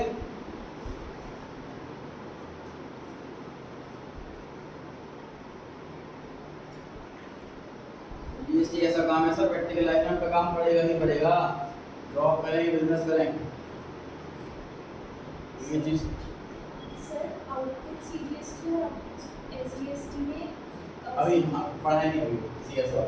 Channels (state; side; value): identical; both; correlation 1.00